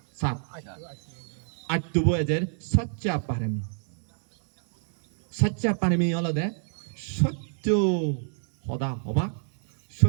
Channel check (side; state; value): left; silent; 60 dB below the other